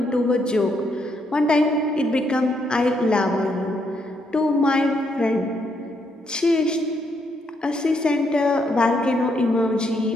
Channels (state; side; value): normal; both; correlation 0.75